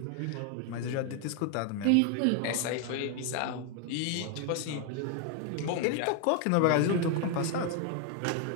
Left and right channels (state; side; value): different; both; correlation 0.01